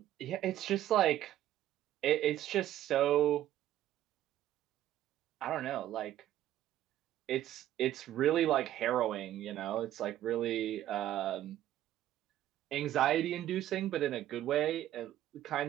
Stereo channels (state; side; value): quieter; left; 12.8 dB